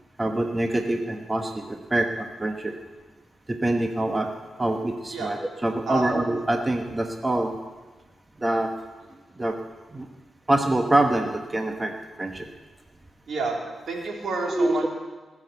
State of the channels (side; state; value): both; normal; correlation 0.94